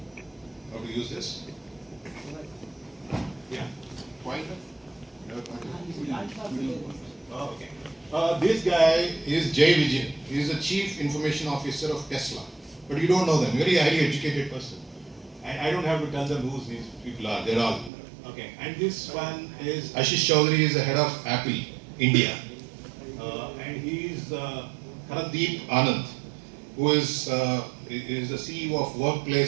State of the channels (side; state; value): left; drops out; at 17.9 s